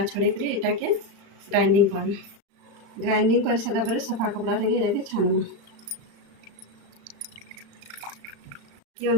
छोड़ी कर इटा के ग्राइंडिंग करना। ग्राइंडिंग कर सारा पर सफा कपड़ा रे छानमा कि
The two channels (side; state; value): left; late; 35 ms